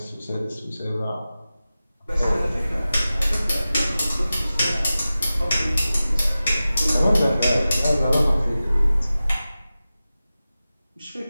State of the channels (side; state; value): both; inverted; correlation -0.95